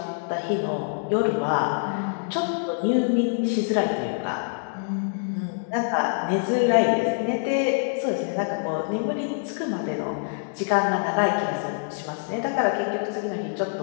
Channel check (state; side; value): silent; right; digital silence